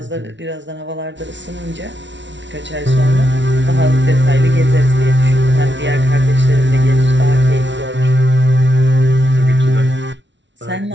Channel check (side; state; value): left; late; 0.53 ms